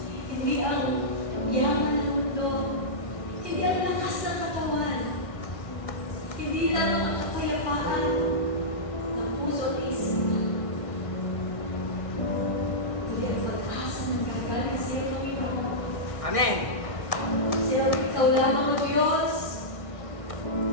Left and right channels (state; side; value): late; right; 1.6 ms